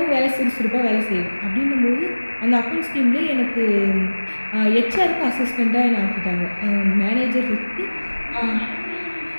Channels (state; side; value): inverted; both; correlation -1.00